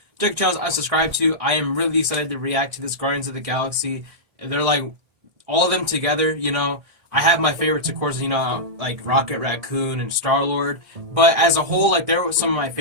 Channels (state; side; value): late; left; 1.6 ms